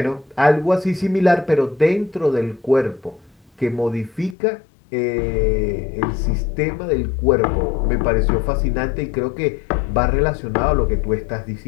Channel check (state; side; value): drops out; right; at 4.4 s